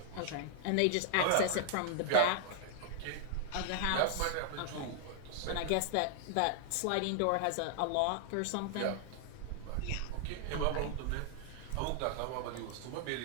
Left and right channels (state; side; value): different; both; correlation -0.01